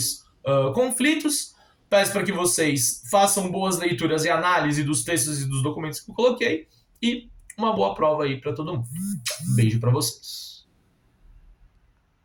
conflitos. Peço para que vocês façam boas leituras e análise dos textos e dos documentos que eu coloquei. E uma boa prova aí para todo mundo. Beijo para vocês.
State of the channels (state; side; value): identical; both; correlation 1.00